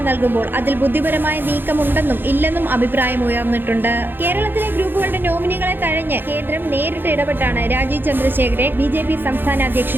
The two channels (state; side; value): late; left; 0.098 ms